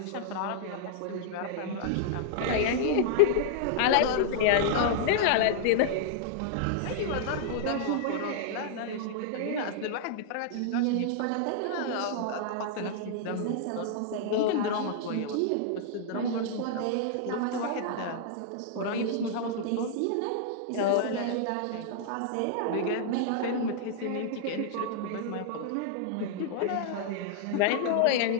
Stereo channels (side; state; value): both; different; correlation -0.01